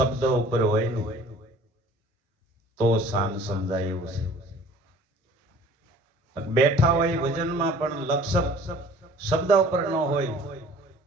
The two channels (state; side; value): normal; both; correlation 0.50